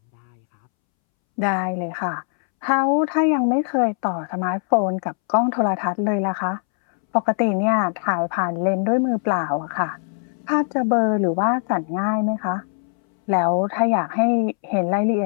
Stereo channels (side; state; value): right; silent; 65 dB below the other